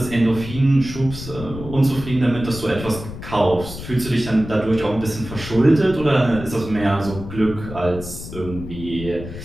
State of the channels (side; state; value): left; noise; rumble, 11 dB below the sound